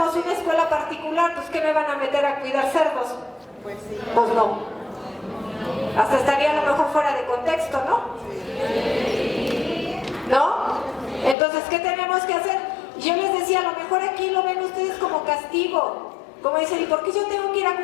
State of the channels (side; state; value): right; drops out; at 11.4 s